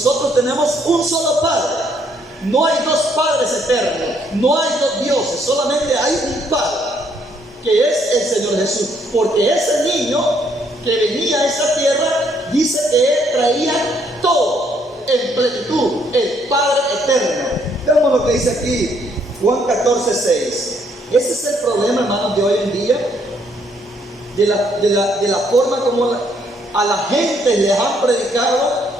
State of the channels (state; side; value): normal; both; correlation 0.69